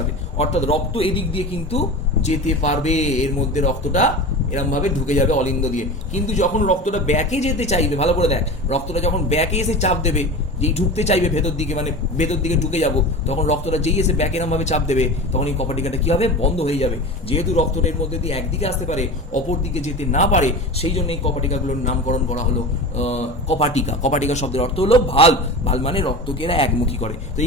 অর্থাৎ রক্ত এদিক দিয়ে কিন্তু যেতে পারবে, এর মধ্যে রক্তটা এরকম ভাবে ঢুকে যাবে অলিন্দ দিয়ে। কিন্তু যখন রক্তটা ব্যাকে যেতে চাইবে, ভালো করে দেখ, রক্তটা যখন ব্যাকে এসে চাপ দেবে, যেই ঢুকতে চাইবে ভেতর দিকে, মানে ভেতর দিকে ঢুকে যাব, তখন রক্তটা যেই এসে ব্যাকে এরকম ভাবে চাপ দেবে, তখন এই কপাটিকাটা কি হবে? বন্ধ হয়ে যাবে। যেহেতু রক্তটা এর মধ্যে দিয়ে একদিকে আসতে পারে, অপর দিকে যেতে না পারে, সেই জন্য এই কপাটিকাগুলোর নামকরণ করা হলো কপাটিকা। কপাটিকা শব্দের অর্থ হলো ভাল। ভাল মানে রক্তকে এরা একমুখী করে। তো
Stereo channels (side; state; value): both; normal; correlation 0.31